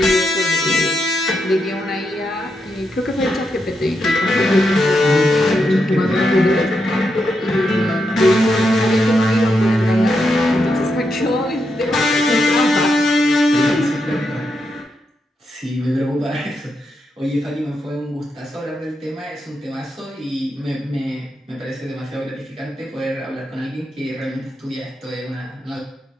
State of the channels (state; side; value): normal; both; correlation 0.83